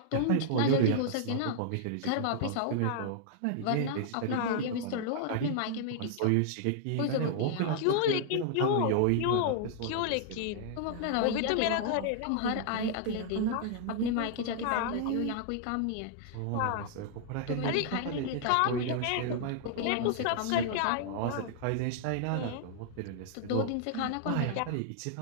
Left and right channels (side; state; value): both; different; correlation -0.01